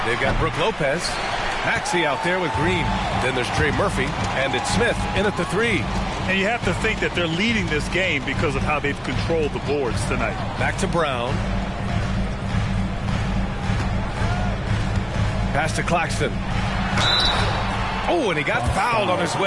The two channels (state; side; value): identical; both; correlation 1.00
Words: they've got Brook Lopez. Maxey out there with Green. Then there's Trey Murphy, and it's Smith in at the three. And you have to think that they're leading this game because of how they've controlled the boards tonight. Back to Brown. Pass to Claxton. Oh, and he got fouled on his